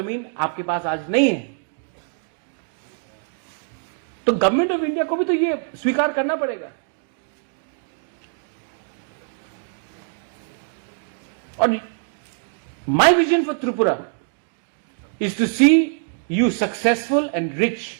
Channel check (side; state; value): left; silent; digital silence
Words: आपके पास आज नहीं है. तो गवर्नमेंट ऑफ इंडिया को भी तो ये स्वीकार करना पड़ेगा. और my vision for Tripura is to see you successful and